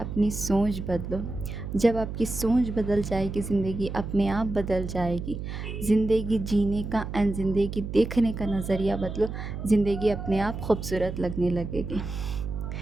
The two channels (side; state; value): right; noise; hum, 6 dB below the sound